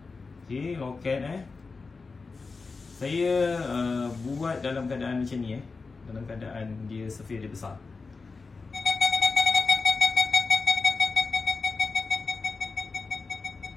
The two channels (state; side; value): quieter; right; 4.3 dB